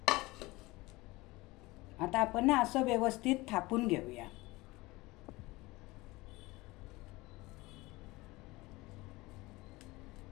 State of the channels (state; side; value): quieter; right; 21.4 dB